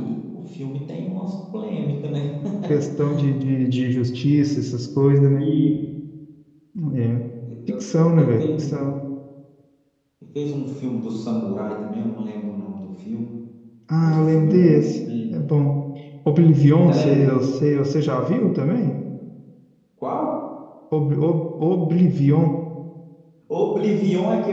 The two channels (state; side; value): identical; both; correlation 1.00